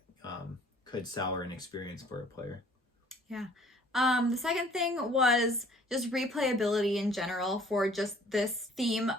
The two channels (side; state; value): both; normal; correlation 0.56